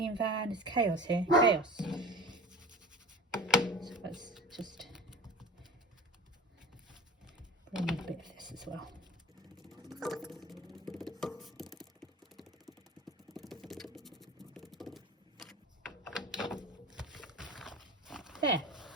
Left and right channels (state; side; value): normal; both; correlation 0.36